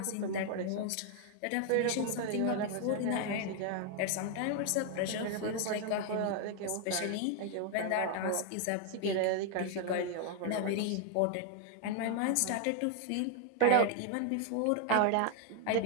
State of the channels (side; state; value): both; different; correlation 0.00